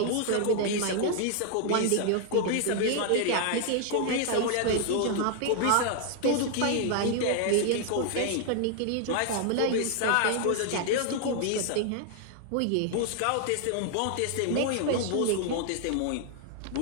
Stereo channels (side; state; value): both; different; correlation 0.00